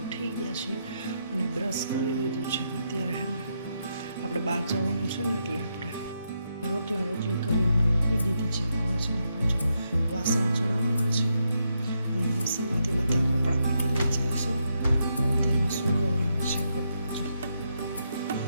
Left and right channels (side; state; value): both; inverted; correlation -0.81